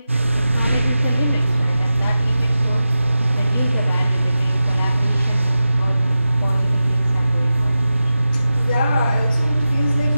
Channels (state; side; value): inverted; both; correlation -0.93